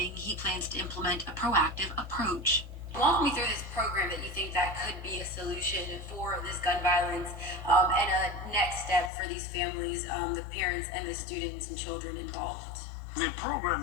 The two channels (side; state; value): right; drops out; at 9.1 s